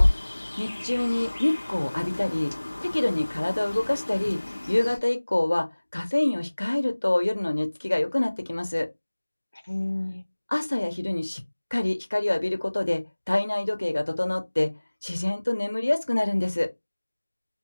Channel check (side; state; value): both; inverted; correlation -1.00